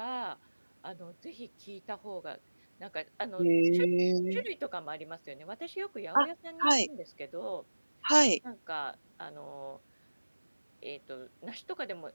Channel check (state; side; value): inverted; both; correlation -1.00